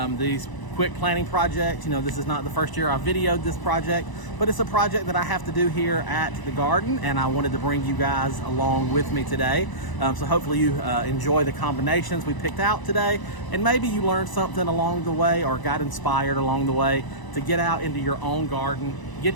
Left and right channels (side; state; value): right; late; 1.0 ms